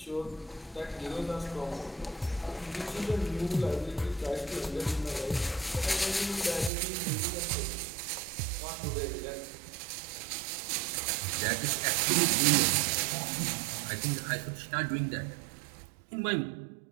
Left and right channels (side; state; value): left; drops out; at 6.7 s